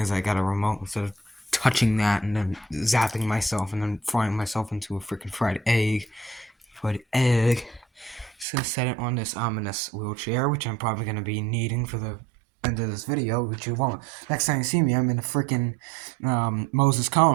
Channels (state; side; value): drops out; left; at 8.5 s